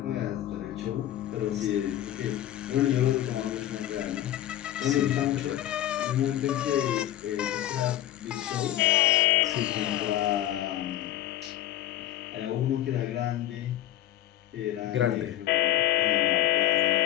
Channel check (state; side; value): quieter; right; 13.0 dB